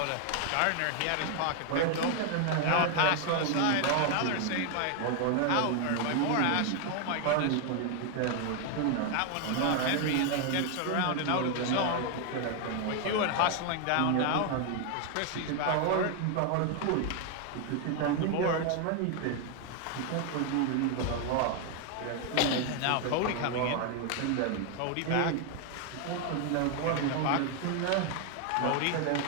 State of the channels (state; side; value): different; both; correlation 0.01